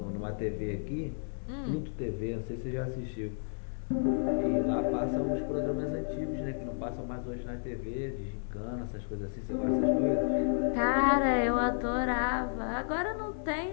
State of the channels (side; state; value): right; silent; 56 dB below the other